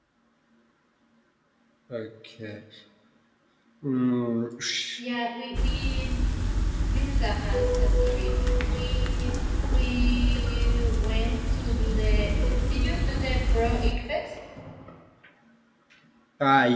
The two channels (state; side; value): identical; both; correlation 1.00